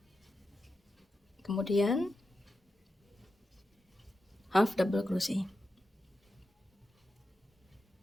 Kemudian half double crochet.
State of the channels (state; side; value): normal; both; correlation 0.89